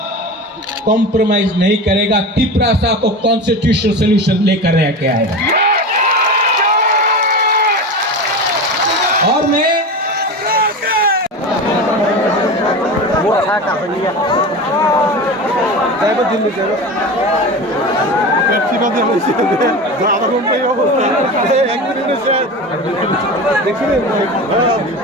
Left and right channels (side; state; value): both; normal; correlation 0.27